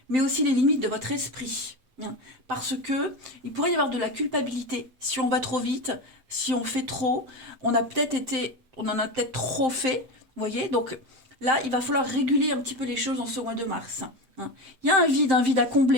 mais aussi les limites de votre esprit. Hein, parce que il pourrait y avoir de la culpabilité si on va trop vite, si on fait trop, on en a peut-être trop fait, vous voyez, donc là il va falloir réguler un petit peu les choses en ce mois de mars. Hein. Il y a un vide à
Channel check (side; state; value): left; late; 7.7 ms